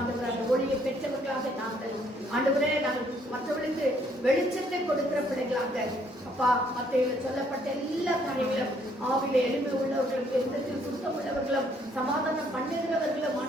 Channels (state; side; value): normal; both; correlation 0.66